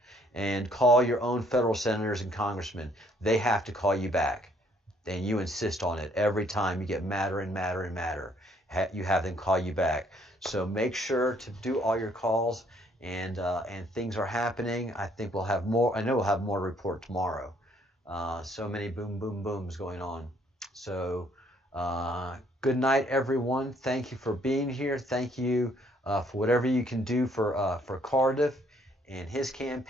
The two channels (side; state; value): both; normal; correlation 0.65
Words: And call your own federal senators and congressmen. They have to call you back. And you insist on it every time. You get madder and madder and madder. You have them call you back. So make sure to do all your calls, and things are happening. I think we'll have more. I know we'll have more to report tomorrow. So many boom, boom, booms going on. So good night, everyone. Thank you for being here. Thank you for whatever you can do for Cardiff and his